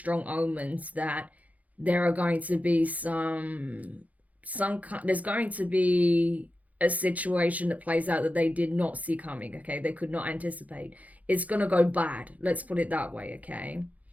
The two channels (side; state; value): left; late; 0.070 ms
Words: omens that there are going to be there's going to be a situation that plays out that they did not see coming, okay? They could not anticipate. It's going to go bad. Let's put it that way, okay?